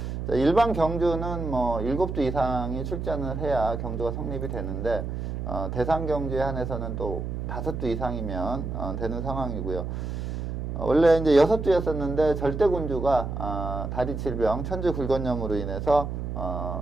일반 경주는 뭐 7두 이상이 출전을 해야 경주가 성립이 되는데 대상경주에 한해서는 또 5두 이상이면 되는 상황이고요. 원래 이제 6두였었는데 절대군주가 다리 질병, 천주 굴건염으로 인해서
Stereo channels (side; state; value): right; noise; hum, 4 dB below the sound